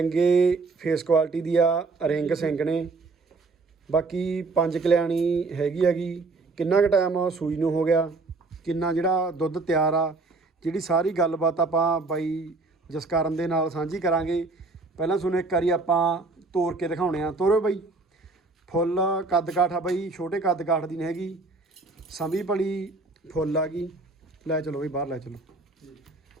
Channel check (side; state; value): left; quieter; 3.7 dB